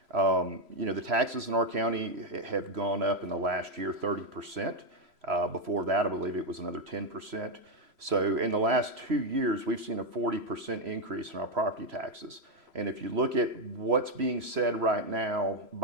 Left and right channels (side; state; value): left; late; 3.0 ms